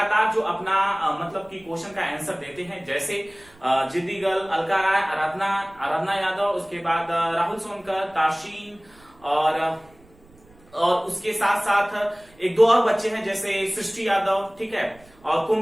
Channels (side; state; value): right; noise; rumble, 28 dB below the sound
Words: जो अपना मतलब कि क्वेश्चन का आंसर देते हैं, जैसे जिद्दी गर्ल, अलका राय, आराधना यादव, उसके बाद राहुल सोनकर, ताशीन और उसके साथ साथ एक दो और बच्चे हैं जैसे सृष्टि यादव, ठीक है, और